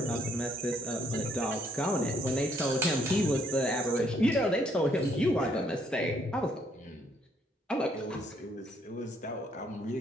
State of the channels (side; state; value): both; normal; correlation 0.69